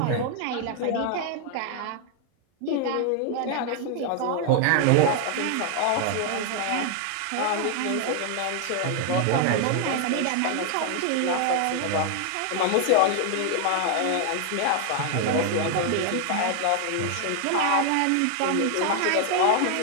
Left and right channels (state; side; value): different; both; correlation 0.00